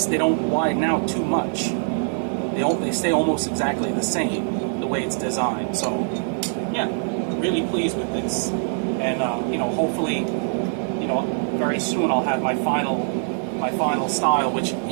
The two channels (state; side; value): silent; left; digital silence